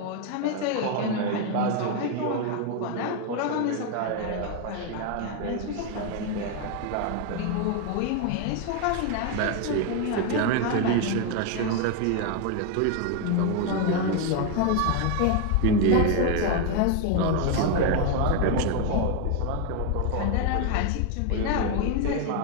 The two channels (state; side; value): different; both; correlation 0.01